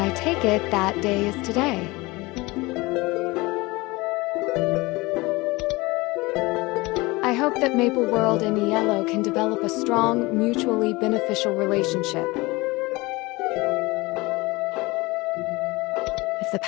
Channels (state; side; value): quieter; right; 22.7 dB